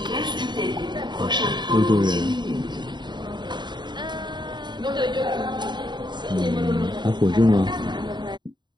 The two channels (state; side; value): late; left; 0.22 ms